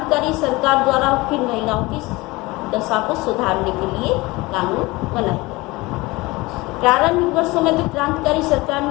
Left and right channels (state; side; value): quieter; right; 22.3 dB